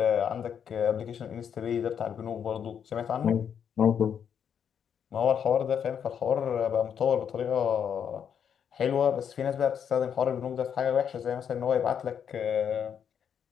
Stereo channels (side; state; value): right; quieter; 8.0 dB